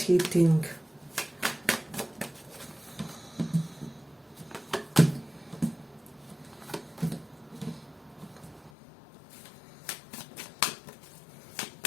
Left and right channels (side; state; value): right; drops out; at 8.7 s